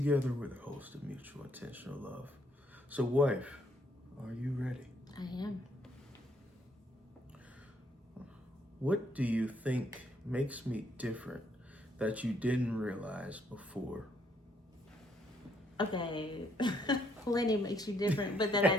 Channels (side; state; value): both; normal; correlation 0.70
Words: we're the host of Mutual Intentional Love. So, wife, are you ready? I am. What do you think makes me different that you didn't realize before? Okay. Plenty makes you different, but that I